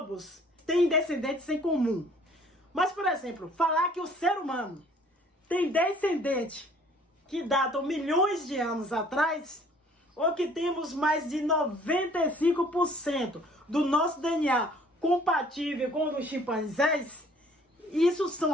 têm descendentes em comum. Mas, por exemplo, falar que o ser humano tem descendentes que datam milhões de anos atrás, ou que temos mais de 95% do nosso DNA compatível com o dos chimpanzés, isso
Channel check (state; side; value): normal; both; correlation 0.56